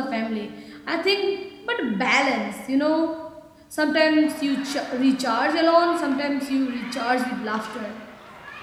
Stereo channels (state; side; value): identical; both; correlation 1.00